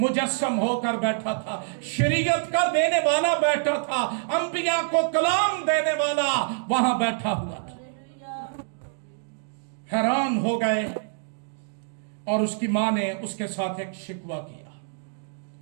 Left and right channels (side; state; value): left; silent; digital silence